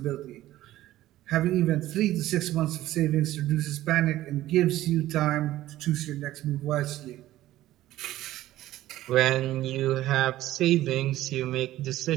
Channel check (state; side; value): quieter; left; 14.9 dB